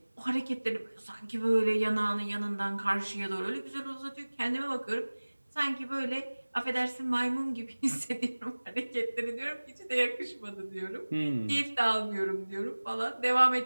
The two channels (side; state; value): both; inverted; correlation -1.00